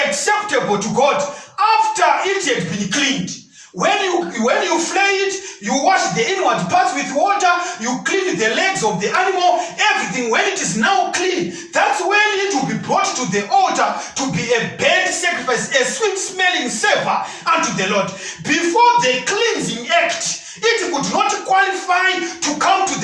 acceptable to God after it had been cleaned. When you flay it, you wash the inward parts with water, you clean the legs of the animal, everything. When it is now clean, that's when it will be brought to the altar to be a burnt sacrifice, a sweet smelling savor unto the Lord. Before the cleansing act, it could not qualify to come to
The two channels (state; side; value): identical; both; correlation 1.00